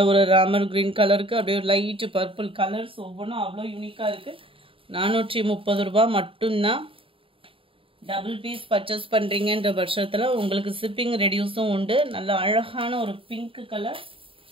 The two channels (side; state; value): left; late; 0.26 ms